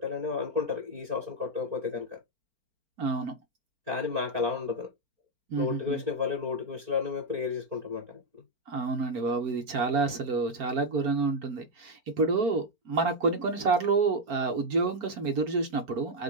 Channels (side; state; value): left; late; 4.4 ms